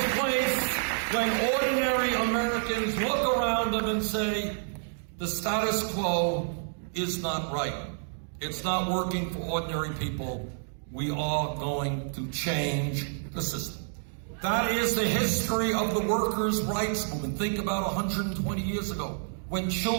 place when ordinary Americans look around them and say, the status quo is not right. It's not working for ordinary people. We are going to change the system. That is the history of the workers' rights movement. Think about 120 years ago, when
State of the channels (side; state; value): left; silent; digital silence